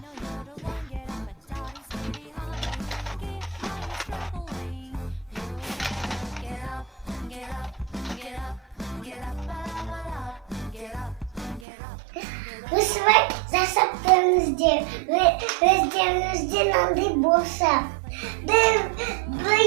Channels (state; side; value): drops out; left; at 11.7 s